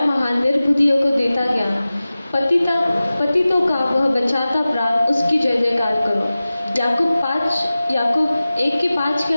निर्बुद्धियों को देता ज्ञान, पतितों का वह बचाता प्राण, उसकी जय जयकार करो। याकूब 1:5 के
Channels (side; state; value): both; inverted; correlation -0.97